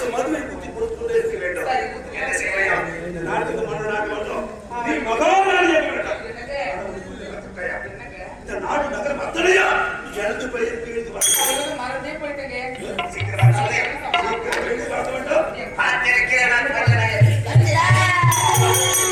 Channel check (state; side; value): identical; both; correlation 1.00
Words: மதுவை குத்தி கொடுத்துக்கொண்டே இருக்க வேண்டும். என்ன செய்யலாம்? இந்த நாட்டுக்கு மன்னனாக வேண்டும். நீ மகாராணியாக வேண்டும். இந்த நாடு நகரம் அத்தனையா எழுந்து பயிருக்கு எழுந்து வரணும். மறந்தே போயிட்டேங்க. சீக்கிரமா எழுந்து வர வேண்டும். பார்த்திருக்கிறேன் நான்